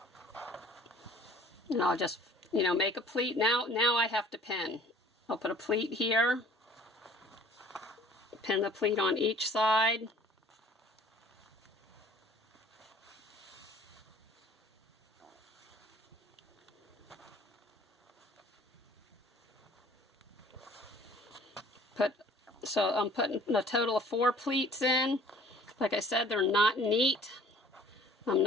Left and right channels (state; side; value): normal; both; correlation 0.53